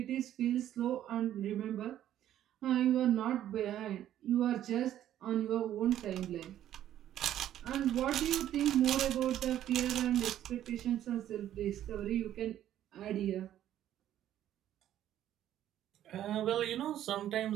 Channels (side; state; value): left; quieter; 11.8 dB